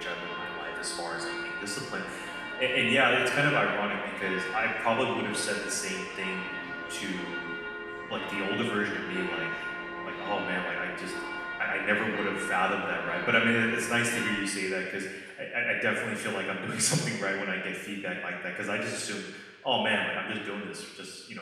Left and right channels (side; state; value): both; identical; correlation 1.00